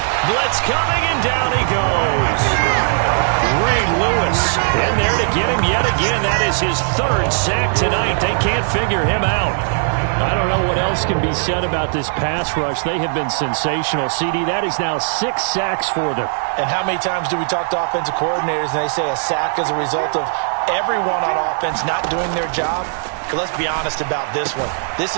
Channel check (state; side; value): silent; left; 67 dB below the other